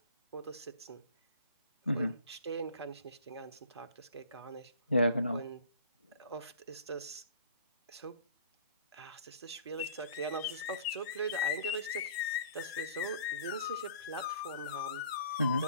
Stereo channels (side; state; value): both; inverted; correlation -0.49